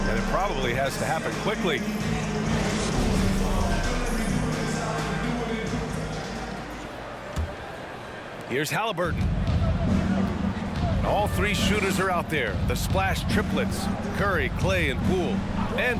it probably has to happen quickly. Here's Halliburton. All three shooters are out there. The splash triplets, Curry, Clay, and Poole.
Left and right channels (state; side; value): identical; both; correlation 1.00